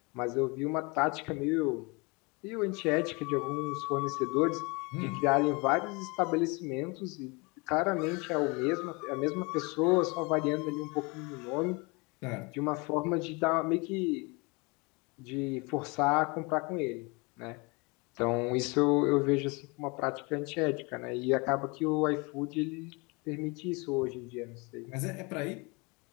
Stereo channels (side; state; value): right; quieter; 28.5 dB